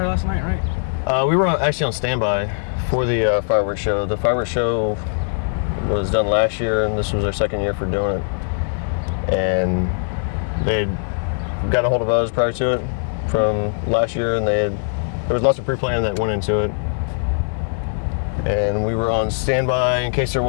last night, right? We were actually on standby for the fireworks show. The fireworks show was done last year, and this was our second year for doing it. And they got a hold of us prior to it from last year, and there was lots of pre-planning that went into it. And we were on standby in case there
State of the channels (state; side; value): silent; right; 65 dB below the other